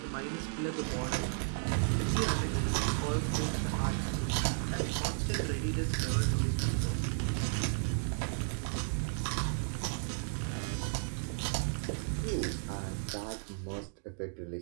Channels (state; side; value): silent; left; digital silence